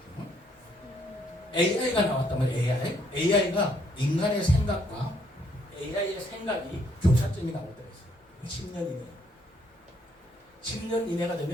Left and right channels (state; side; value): normal; both; correlation 0.69